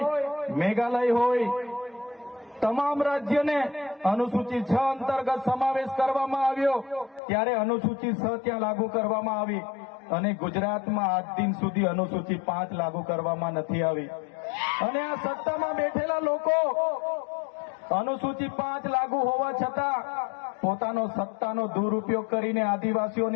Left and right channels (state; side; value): drops out; right; at 7.2 s